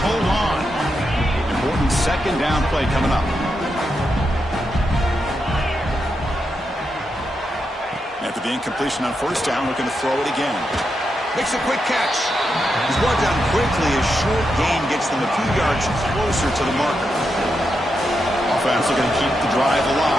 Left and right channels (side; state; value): both; normal; correlation 0.85